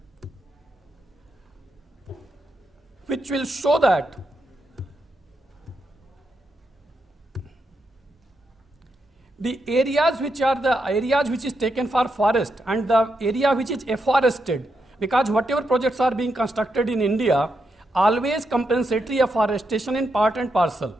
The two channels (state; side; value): normal; both; correlation 0.83